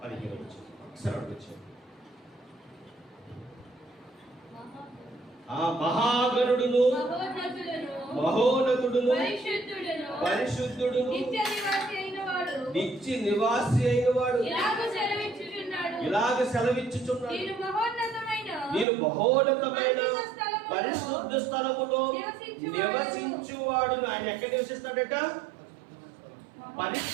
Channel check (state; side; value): drops out; left; at 18.9 s